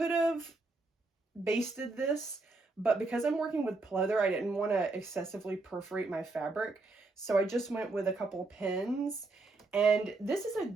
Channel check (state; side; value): quieter; left; 3.4 dB